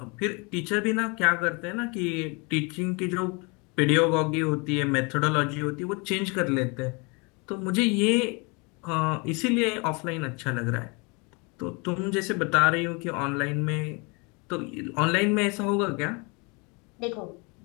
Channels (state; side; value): quieter; right; 30.0 dB